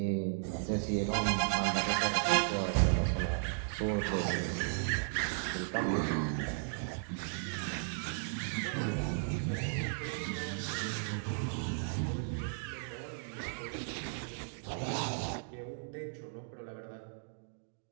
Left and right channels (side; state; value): left; silent; digital silence